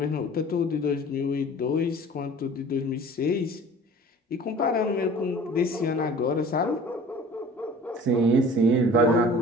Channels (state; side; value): normal; both; correlation 0.45